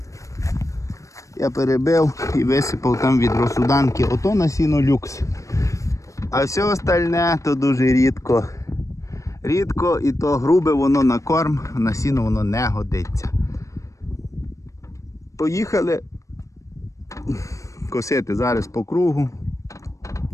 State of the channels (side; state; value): right; late; 0.15 ms